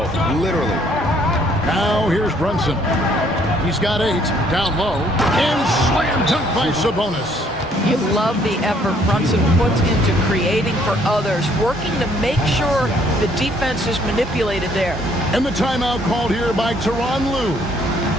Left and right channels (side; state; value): both; normal; correlation 0.64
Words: literally. Now here's Brunson. He's got 8, down low, and slam dunk by Sabonis. You love the effort Brunson puts into creating for others, working to make sure the defense is manipulated there. And the timeout called here by Tyronn Lue.